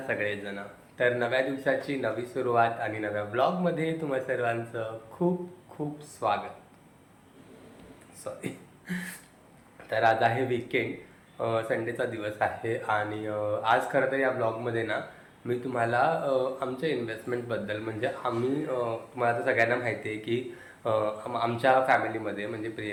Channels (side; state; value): both; identical; correlation 1.00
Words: सगळेजण. तर नव्या दिवसाची नवी सुरुवात आणि नव्या ब्लॉगमध्ये तुम्हा सर्वांचं खूप खूप स्वागत. सॉरी. तर आज आहे वीकेंड, संडेचा दिवस आहे आणि आज खरं तर या ब्लॉगमध्ये ना मी तुम्हाला आमच्या इन्व्हेस्टमेंटबद्दल म्हणजे आम्ही तुम्हाला तर सगळ्यांना माहिती आहे की आमच्या फॅमिलीमध्ये म्हणजे